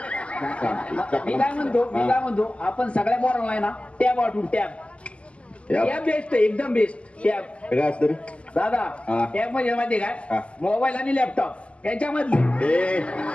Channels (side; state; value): right; late; 0.058 ms